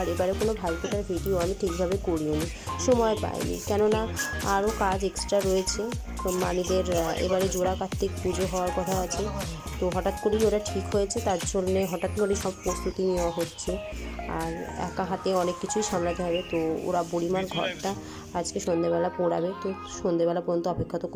এবারে কোনো ভাইফোঁটার ভিডিও আমি ঠিকভাবে করিওনি, সময় পাইনি, কেননা আরও কাজ এক্সট্রা রয়েছে। মানিদের এবারে জোড়া কার্তিক পুজো হওয়ার কথা আছে, তো হঠাৎ করেই ওরা ঠিক হয়েছে, তার জন্যে হঠাৎ করে সব প্রস্তুতি নেওয়া হচ্ছে। আর একা হাতে অনেক কিছুই সামলাতে হবে। তো ওরা বুড়িমার ঘরটা আজকে সন্ধেবেলা পোড়াবে, তো সন্ধেবেলা পর্যন্ত অপেক্ষা তো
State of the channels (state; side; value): identical; both; correlation 1.00